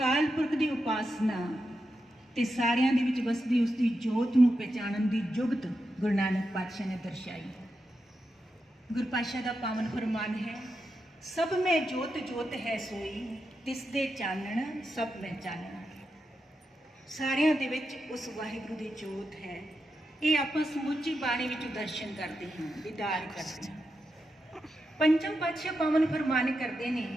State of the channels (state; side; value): normal; both; correlation 0.87